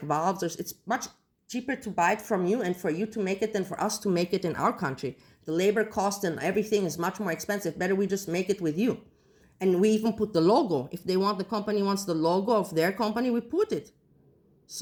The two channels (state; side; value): identical; both; correlation 1.00